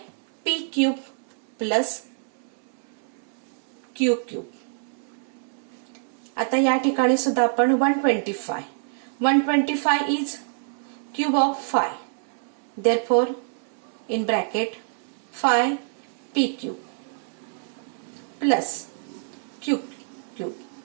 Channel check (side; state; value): left; silent; 61 dB below the other